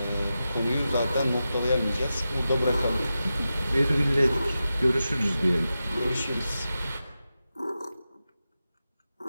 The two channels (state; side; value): inverted; both; correlation -0.92